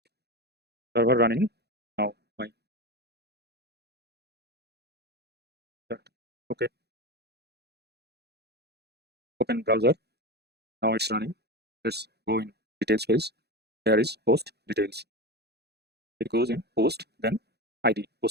server running. Now my okay. Open browser. Now it's running. Let's go in details page. Here is post details. It goes in post, then ID,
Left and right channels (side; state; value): left; late; 0.48 ms